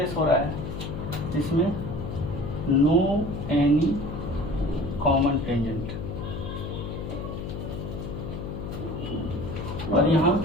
हो रहा है जिसमें नो एनी कॉमन टेंजेंट, और यहाँ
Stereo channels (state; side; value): noise; left; hum, 6 dB below the sound